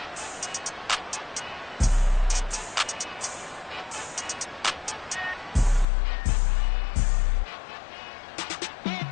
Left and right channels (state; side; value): drops out; right; at 5.9 s